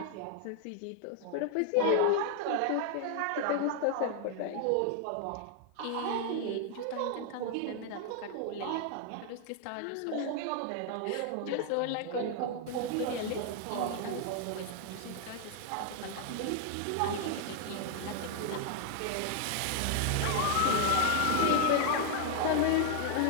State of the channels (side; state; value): both; different; correlation 0.00